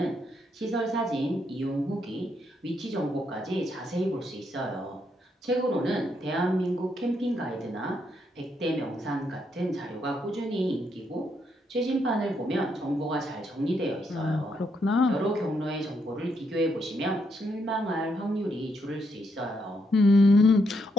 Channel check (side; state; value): both; normal; correlation 0.77